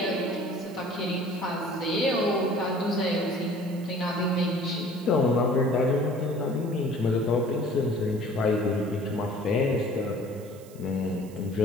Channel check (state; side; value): noise; right; hiss, 23 dB below the sound